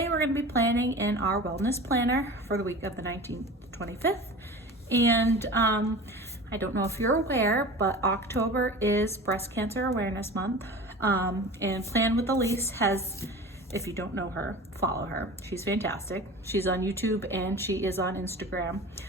we're going to be planning in our wellness planner for the week of the 19th to 25th, and I don't know if you're aware, but October is Breast Cancer Awareness Month. And Plan with Ilysse has, if you don't know her, follow her. She's fantastic. She's on YouTube and she is on Instagram.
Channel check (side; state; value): both; normal; correlation 0.36